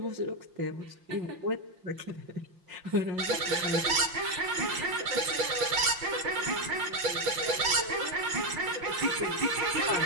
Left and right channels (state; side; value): late; left; 5.7 ms